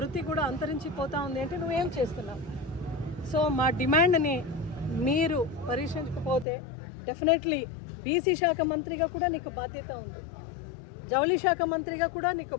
కూడా అంతరించిపోతూ ఉంది అంటే నువ్వేం చేస్తున్నావు? సో మా డిమాండ్ని మీరు పరిశీలించకపోతే డెఫినెట్లీ బీసీ శాఖ మంత్రిగా కూడా నీకు బాధ్యత ఉంది, జౌళి శాఖ మంత్రిగా కూడా నీకు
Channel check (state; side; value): drops out; right; at 6.5 s